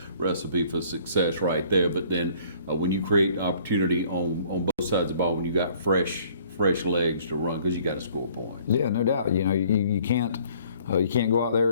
recipe for success right there. But then when you create opportunity on both sides of the ball, when you got fresh legs to run, because you got to score points. Yeah, no doubt. You know, you can't go out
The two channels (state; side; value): inverted; both; correlation -0.58